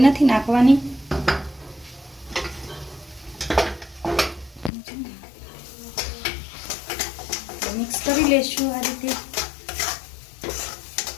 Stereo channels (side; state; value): right; drops out; at 4.7 s